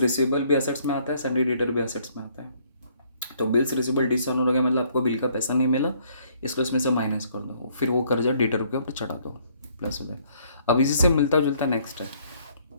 भी असेट्स में आता है, संडे डेटर भी असेट्स में आता है। तो बिल्स रिसीवेबल डिसऑनर हो गया, मतलब आपको बिल का पैसा नहीं मिला, इसको इसमें से माइनस कर दो, फिर वो कर्जा डेटर के ऊपर चढ़ा दो, प्लस हो जाए। अब इसी से मिलता जुलता नेक्स्ट है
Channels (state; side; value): inverted; both; correlation -0.64